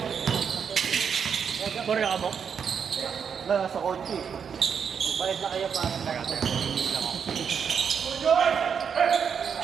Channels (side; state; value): left; quieter; 7.0 dB